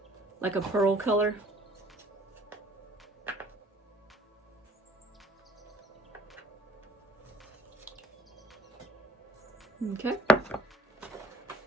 like a pearl color. Okay.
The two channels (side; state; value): both; normal; correlation 0.55